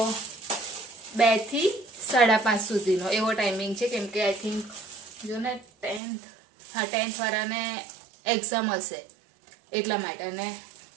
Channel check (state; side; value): drops out; left; at 6.0 s